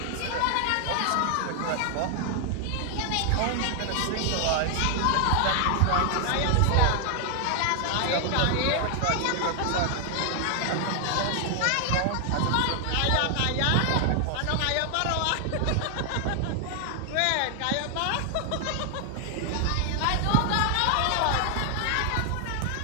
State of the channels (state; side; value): different; both; correlation 0.00